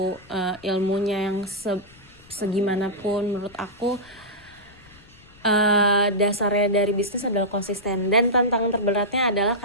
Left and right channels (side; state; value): left; noise; rumble, 25 dB below the sound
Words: ilmunya yang segimanapun. Menurut aku dasarnya dari bisnis adalah konsisten, dan tantangan terberatnya adalah